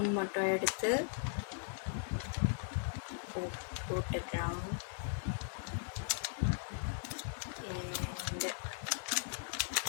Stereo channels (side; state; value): right; silent; 52 dB below the other